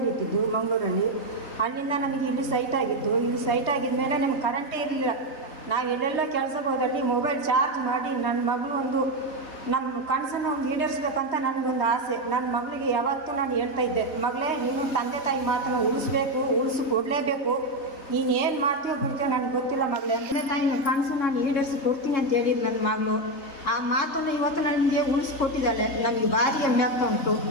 ಇಟ್ಟಿದ್ದು ಮಂಗಳೂರಲ್ಲಿ. ಅಲ್ಲಿಂದ ನಮಗೆ ಇಲ್ಲಿ ಸೈಟ್ ಆಗಿತ್ತು. ಇಲ್ಲಿ ಸೈಟ್ ಆಗಿದ ಮೇಲೆ ನಮ್ಗೆ ಕರೆಂಟೇ ಇರಲಿಲ್ಲ. ನಾವು ಎಲ್ಲೆಲ್ಲ ಕೆಲಸಕ್ಕೆ ಹೋದಲ್ಲಿ ಮೊಬೈಲ್ ಚಾರ್ಜ್ ಮಾಡಿ ನನ್ನ ಮಗಳು ಒಂದು ನಮ್ಮ ಕನಸನ್ನು ಈಡೇರಿಸ್ಬೇಕಂತ ನನಗೊಂದು ಆಸೆ. ನನ್ನ ಮಗಳಿಗೆ ಯಾವತ್ತೂ ನಾನು ಹೇಳ್ತಾ ಇದ್ದೆ, ಮಗಳೇ ನೀನು ತಂದೆ ತಾಯಿ ಮಾತನ್ನು ಉಳಿಸ್ಕೊಡ್ಲೇಬೇಕು. ನೀನು ಏನು ಮಾಡ್ತೀವೋ ಬಿಡ್ತೀವೋ ನನಗೆ ಗೊತ್ತಿಲ್ಲ ಮಗಳೇ, ತಂದೆ ತಾಯಿನ ಕನಸು ನಾನು ಈಡೇರಿಸಿ ಕೊಡ್ತೀನಿ ಅಂತ ಹೇಳಿದ್ರು ನನ್ನ ಮಗಳು. ಆ ಮಾತನ್ನು ಇವತ್ತು ನನಗೆ ಉಳಿಸ್ಕೊಟ್ಟಿದ್ದಾಳೆ. ನನಗೆ ಭಾರಿ ಹೆಮ್ಮೆ ಆಗ್ತಾ ಉಂಟು.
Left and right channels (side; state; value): right; late; 3.2 ms